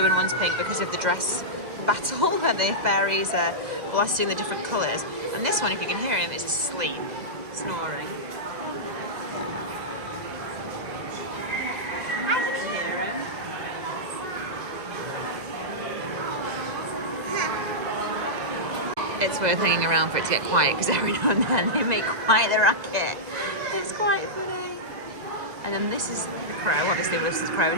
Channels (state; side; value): late; left; 2.0 ms